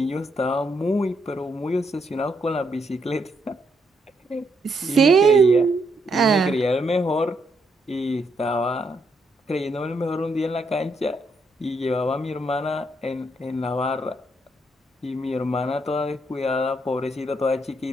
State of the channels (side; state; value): both; normal; correlation 0.76